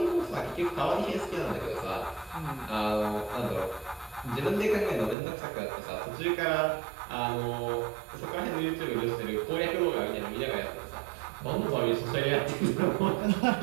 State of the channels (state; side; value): drops out; left; at 5.2 s